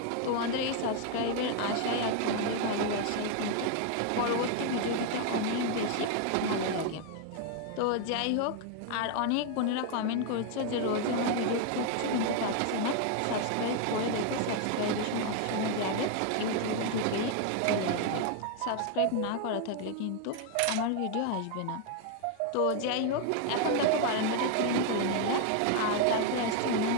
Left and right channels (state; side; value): different; both; correlation 0.00